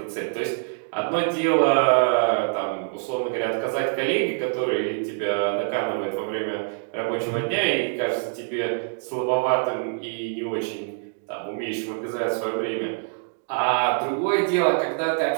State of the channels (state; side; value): silent; left; digital silence